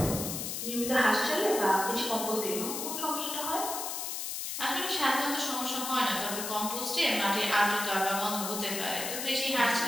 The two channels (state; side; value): noise; left; hiss, 4 dB below the sound